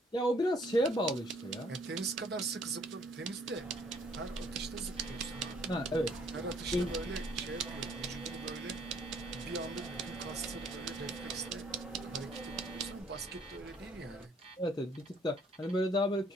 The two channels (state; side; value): normal; both; correlation 0.63